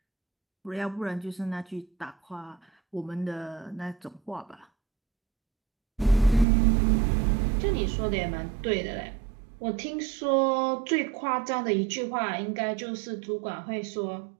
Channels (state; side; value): drops out; left; at 6.5 s